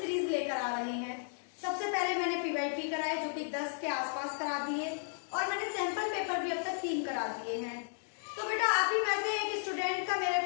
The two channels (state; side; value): silent; right; digital silence